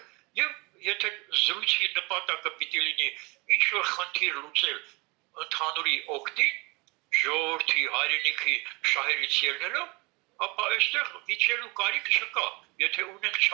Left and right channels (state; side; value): quieter; left; 26.8 dB